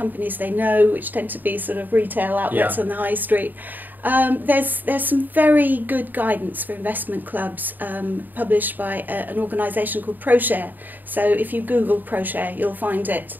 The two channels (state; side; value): late; left; 0.088 ms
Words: they know, which tend to be sort of retail outlets on the high street. There's some very good guidance for investment clubs published by an organisation called ProShare. So if you Google ProShare, you'll find it,